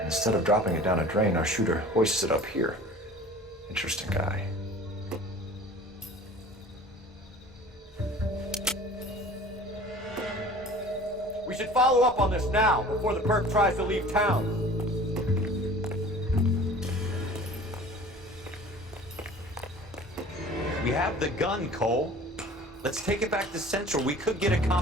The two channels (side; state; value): both; normal; correlation 0.44